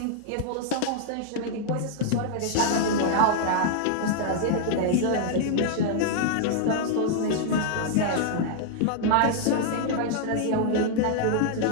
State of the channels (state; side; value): different; both; correlation -0.01